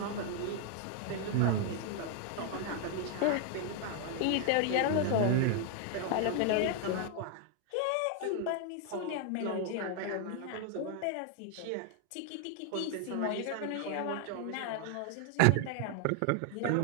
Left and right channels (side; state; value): both; different; correlation 0.00